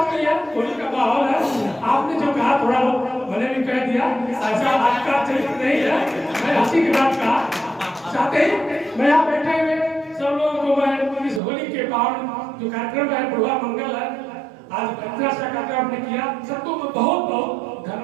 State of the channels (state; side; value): drops out; left; at 11.4 s